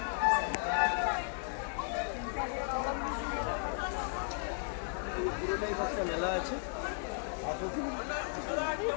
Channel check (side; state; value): right; silent; 54 dB below the other